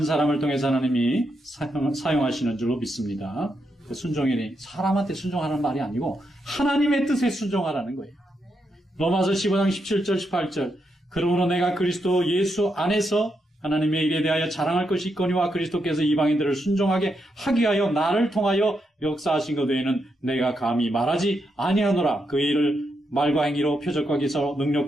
사람을 통해서 하나님이 사용하시는 줄로 믿습니다. 순종이니 사람한테 순종하라는 말이 아니고 하나님의 뜻에 순종하라는 거예요. 로마서 15장 17절 18절 그러므로 내가 그리스도 예수 안에서 하나님의 일에 대하여 자랑할 것이 있거니와 그리스도께서 이방인들을 순종하게 하기 위하여 나를 통하여 역사하신 것 외에는 내가 감히 말하지 아니하노라. 그 일을 말과 행위로 표적과 기사로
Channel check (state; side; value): normal; both; correlation 0.82